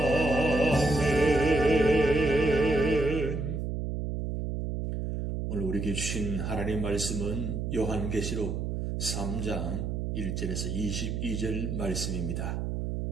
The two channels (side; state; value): right; noise; hum, 2 dB below the sound